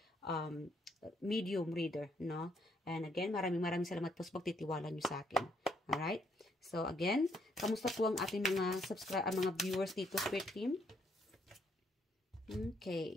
medium reader, no? And again, maraming salamat po sa pagtitiwala nyo sa akin. Alright? So, again, kamusta po ang ating mga mga viewers dito, Spirit Team?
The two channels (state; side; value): normal; both; correlation 0.70